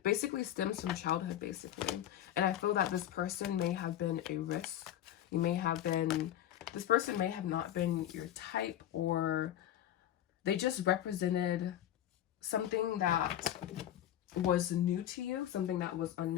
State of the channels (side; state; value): right; quieter; 11.6 dB